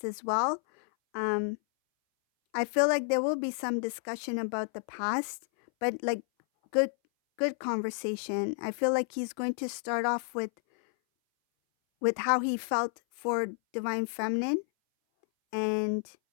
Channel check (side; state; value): right; silent; 57 dB below the other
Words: as well. I feel like there will be some discussion about the past, but like good conversation. I feel like he's going to start off with how he felt for divine feminine and